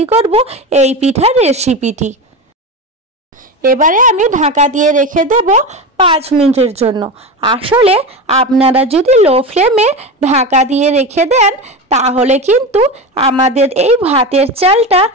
করব এই পিঠার রেসিপিটি। এবারে আমি ঢাকা দিয়ে রেখে দেব 5 মিনিটের জন্য। আসলে আপনারা যদি লো ফ্লেমে ঢাকা দিয়ে রেখে দেন তাহলে কিন্তু আমাদের এই ভাতের চালটা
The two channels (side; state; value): both; normal; correlation 0.22